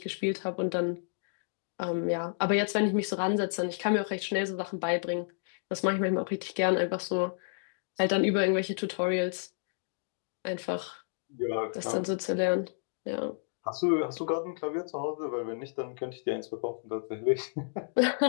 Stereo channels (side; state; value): right; silent; digital silence